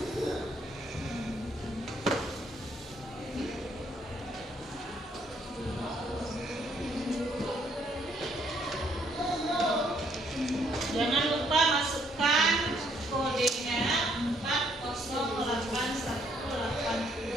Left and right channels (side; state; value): both; normal; correlation 0.68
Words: Jangan lupa masukkan kodenya